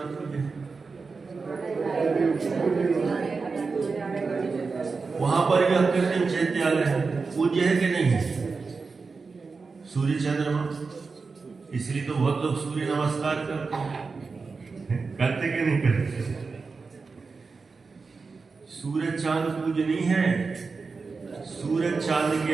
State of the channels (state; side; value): quieter; left; 4.5 dB